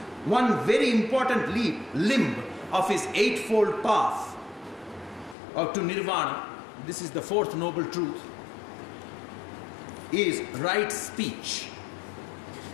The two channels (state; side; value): drops out; right; at 5.4 s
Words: one very important limb of his eightfold path to Nirvana, this is the fourth noble truth, is right speech.